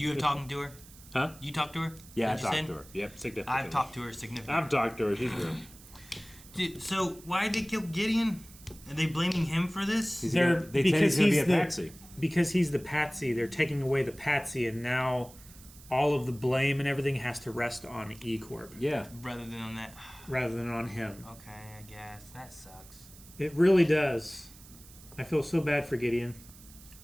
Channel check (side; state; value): right; noise; hiss, 21 dB below the sound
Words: have talked to her? Huh? You talked to her? Yeah, I Is that what you talked to said? her. Yep, significantly. I've talked to her significantly. I've talked to her. She's real. Dude, so why did they kill Gideon? Are they blaming him for this? They said he's gonna be a patsy. Because he's the patsy, they're taking away the patsy, and now all of the blame and everything has to rest on E Corp Yeah. Rather than on that. rather than on him. Okay, I guess. That sucks. It really does. I feel so bad for Gideon.